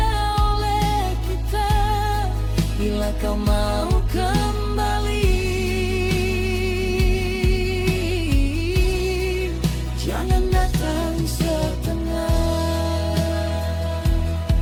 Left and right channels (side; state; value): both; identical; correlation 1.00